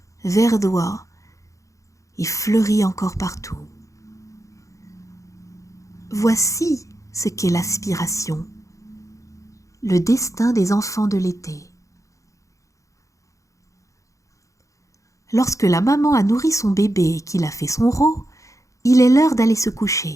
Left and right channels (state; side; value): late; right; 0.15 ms